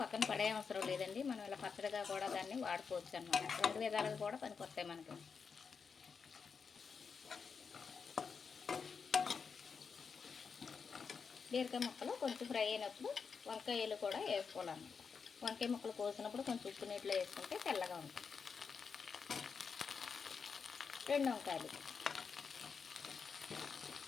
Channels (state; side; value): quieter; right; 5.7 dB